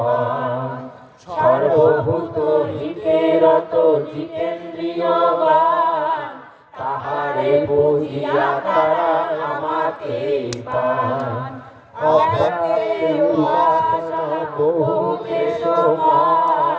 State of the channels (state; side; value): identical; both; correlation 1.00